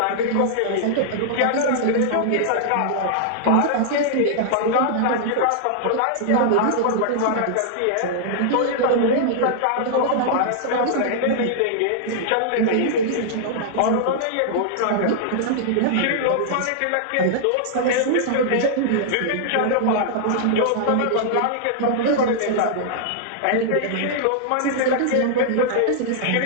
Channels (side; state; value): both; different; correlation -0.01